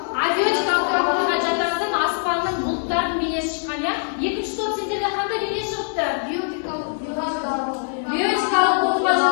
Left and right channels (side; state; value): right; silent; 64 dB below the other